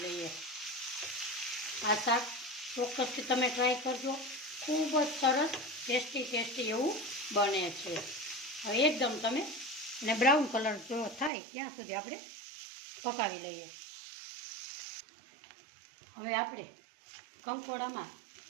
લઈએ। આ શાક ચોક્કસથી તમે ટ્રાય કરજો, ખૂબ જ સરસ ટેસ્ટી એવું બને છે। હવે એકદમ તમે ને બ્રાઉન કલર જો થાય ત્યાં સુધી આપણે પકાવી લઈએ। હવે આપણે કંકોડામાં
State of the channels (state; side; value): drops out; left; at 11.3 s